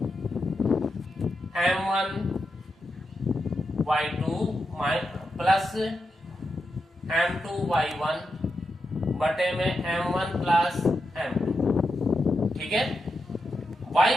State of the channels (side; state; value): both; normal; correlation 0.87